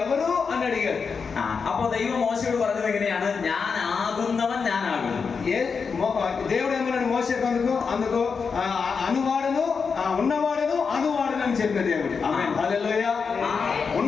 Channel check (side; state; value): right; quieter; 5.5 dB